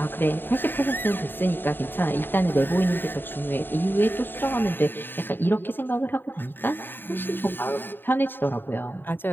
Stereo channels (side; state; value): right; late; 0.095 ms